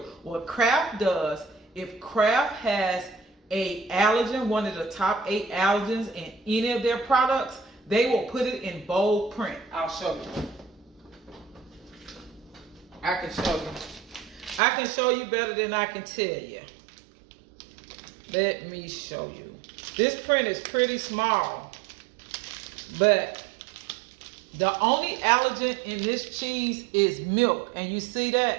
What Kraft does, if Kraft has a allergen, one of the top 8 allergens in any of their products, they will put it in bold print. I'll show you. I can show you. I can show you better than I can tell you. Let me show you. This print is pretty small, but the only allergen in this cheese is milk. And you see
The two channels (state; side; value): drops out; left; at 14.6 s